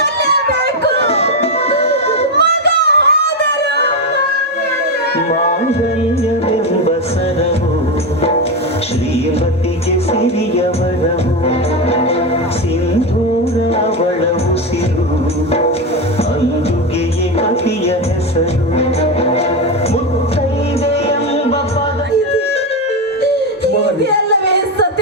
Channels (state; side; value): normal; both; correlation 0.12